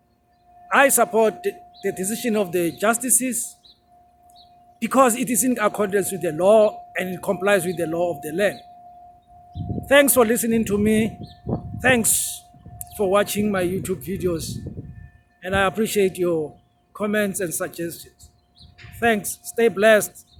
I support the decision of the justices because it is in accordance with the law and it complies with the law of the land. Thanks for listening to me. Thanks for watching my YouTube videos. And I appreciate your comments and suggestions. Thanks. Stay blessed.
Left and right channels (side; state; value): both; identical; correlation 1.00